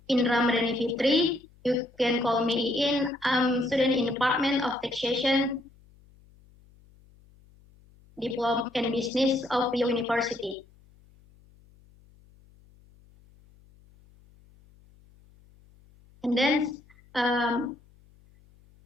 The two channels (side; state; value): left; noise; hum, 28 dB below the sound